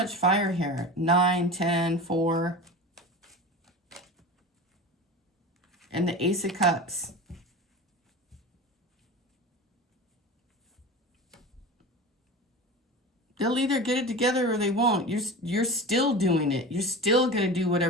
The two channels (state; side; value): normal; both; correlation 0.31